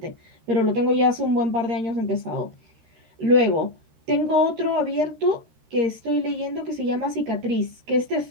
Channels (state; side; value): late; left; 13 ms